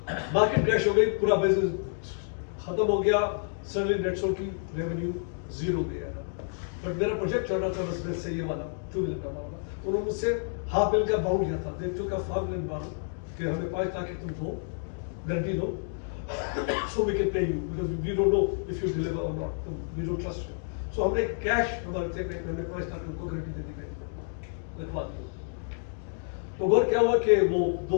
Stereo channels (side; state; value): right; silent; digital silence